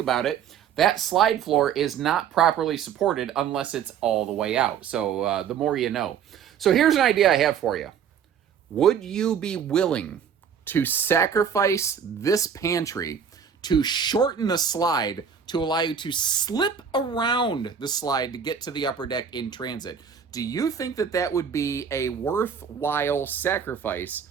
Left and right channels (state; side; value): quieter; left; 7.6 dB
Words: it, that slide floor is not properly supported unless it's all the way out. So the more you know. So here's an idea I have for you. Would you be willing to sacrifice this pantry to shorten the slide to allow you to slip around the slide to get to the upper deck in transit? Do you think that that would be a worthwhile sacrifice?